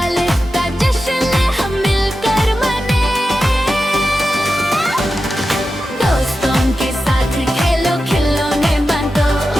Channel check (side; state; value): both; normal; correlation 0.91